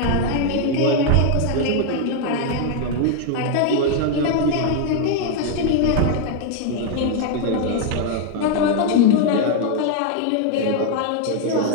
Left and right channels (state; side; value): different; both; correlation 0.00